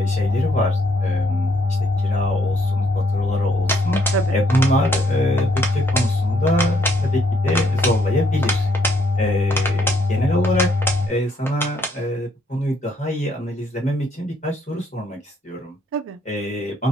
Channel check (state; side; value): normal; both; correlation 0.71